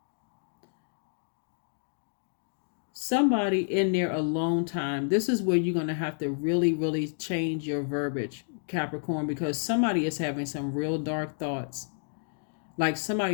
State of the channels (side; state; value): right; silent; digital silence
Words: somebody in their alone time, this is where you're going to have to really, really change your verbiage, Capricorn, because somebody is having some real dark thoughts. Like